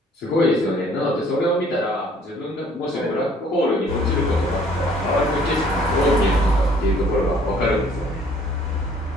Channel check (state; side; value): normal; both; correlation 0.58